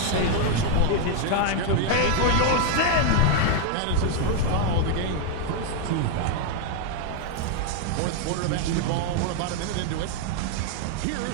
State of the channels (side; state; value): both; different; correlation 0.00